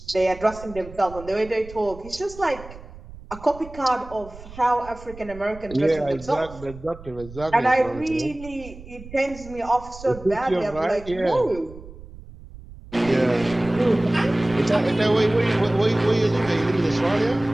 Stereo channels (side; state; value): right; noise; rumble, 17 dB below the sound